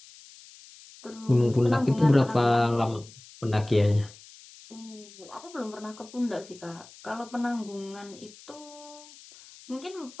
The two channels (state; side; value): noise; left; hiss, 21 dB below the sound